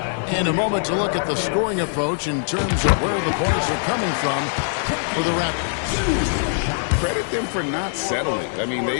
And a moment to look at the scoring approach in terms of where the points are coming from for the Raptors. Credit them for not settling. I mean,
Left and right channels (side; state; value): right; silent; 64 dB below the other